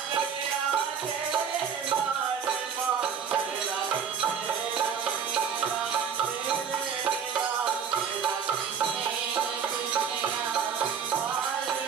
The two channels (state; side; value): quieter; left; 7.2 dB